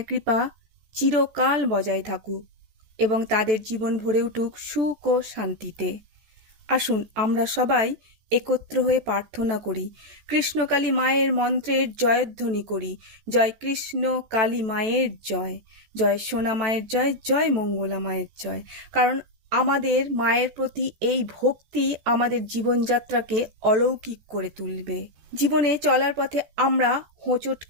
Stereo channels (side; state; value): left; late; 14 ms